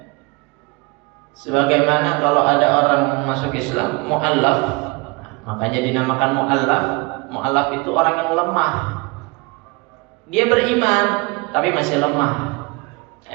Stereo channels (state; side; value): quieter; left; 26.4 dB